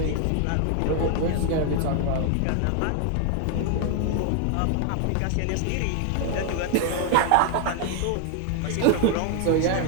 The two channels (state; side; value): different; both; correlation 0.00